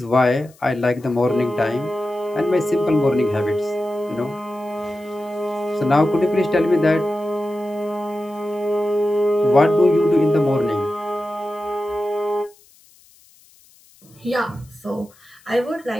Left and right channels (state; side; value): noise; left; hiss, 28 dB below the sound